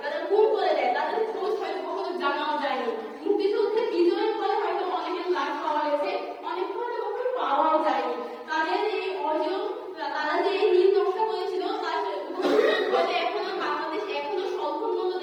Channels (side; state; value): both; identical; correlation 1.00